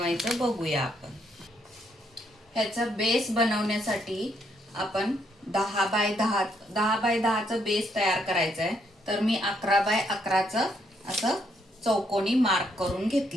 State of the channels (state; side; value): normal; both; correlation 0.73